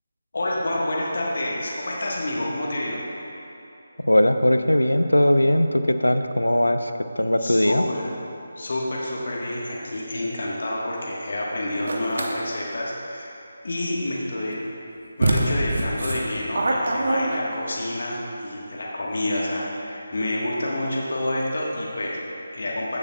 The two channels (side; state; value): both; inverted; correlation -0.95